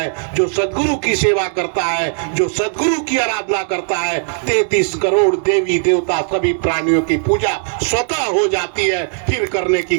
जो सदगुरु की सेवा करता है, जो सदगुरु की आराधना करता है, 33 करोड़ देवी देवता सभी प्राणियों की पूजा स्वतः हो जाती है, फिर करने की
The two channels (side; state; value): left; silent; 62 dB below the other